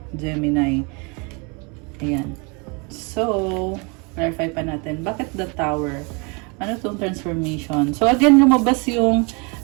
Gemini. Ayan. So, clarify pa natin. Bakit the Tower? Ano tong transformation? So, again, lumabas yung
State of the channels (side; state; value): left; quieter; 31.4 dB